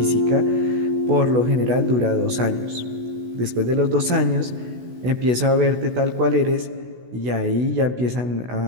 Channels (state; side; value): late; left; 16 ms